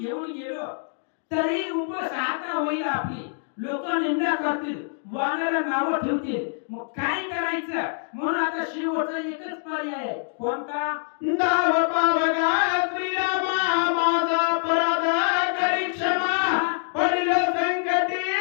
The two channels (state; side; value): silent; right; digital silence